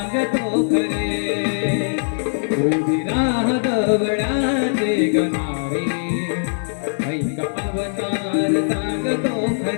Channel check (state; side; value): silent; right; 65 dB below the other